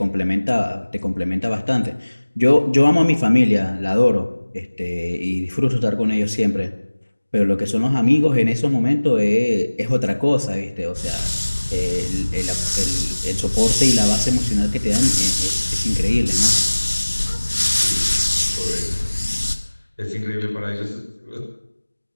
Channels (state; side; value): inverted; both; correlation -1.00